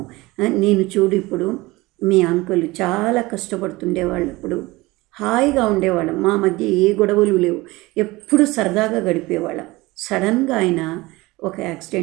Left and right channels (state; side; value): quieter; left; 21.1 dB